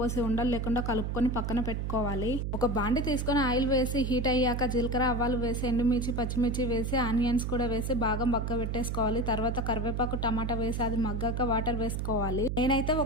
ఉండలు లేకుండా కలుపుకొని పక్కన పెట్టుకోవాలి. ఒక బాండి తీసుకొని ఆయిల్ వేసి హీట్ అయ్యాక జీలకర్ర ఆవాలు వేసి ఎండుమిర్చి పచ్చిమిర్చి వేసి ఆనియన్స్ కూడా వేసి బాగా మగ్గ పెట్టేసుకోవాలి. తర్వాత కరివేపాకు టమాటా వేసి అది మగ్గాక వాటర్ వేసుకోవాలి. నేనైతే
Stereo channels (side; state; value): right; noise; hum, 1 dB below the sound